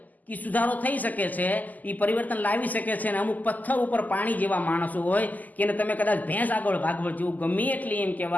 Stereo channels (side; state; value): right; late; 0.081 ms